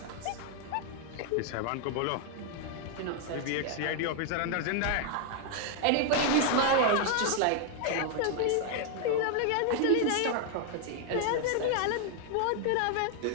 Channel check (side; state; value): both; different; correlation 0.00